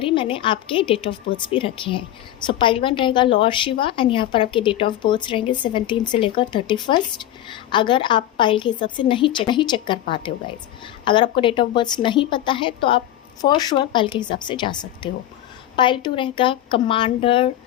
ही मैंने आपके डेट ऑफ बर्थ भी रखे हैं। सो पाइल 1 रहेगा लॉर्ड शिवा एंड यहाँ पर आपके डेट ऑफ बर्थ रहेंगे 17 से लेकर 31। अगर आप पाइल के हिसाब से नहीं चेक कर पाते हो गाइज, अगर आपको डेट ऑफ बर्थ नहीं पता है तो आप फॉर श्योर पाइल के हिसाब से जा सकते हो। पाइल 2 रहेगा कमांडर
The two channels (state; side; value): quieter; right; 12.8 dB